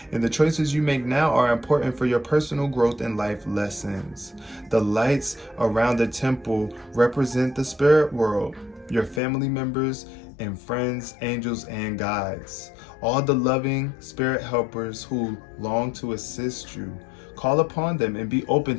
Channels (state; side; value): drops out; right; at 9.2 s